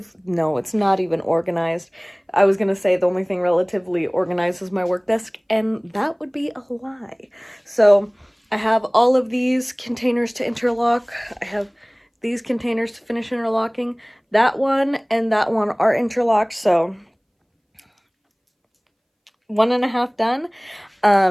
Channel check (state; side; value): identical; both; correlation 1.00